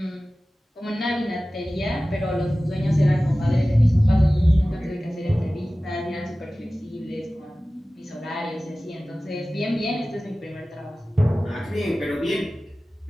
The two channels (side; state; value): both; normal; correlation 0.97